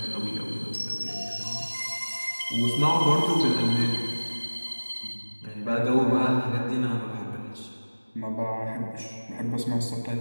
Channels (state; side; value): inverted; both; correlation -1.00